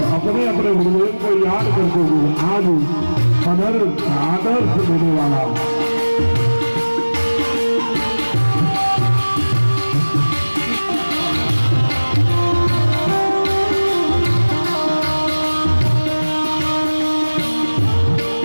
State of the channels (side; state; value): both; inverted; correlation -1.00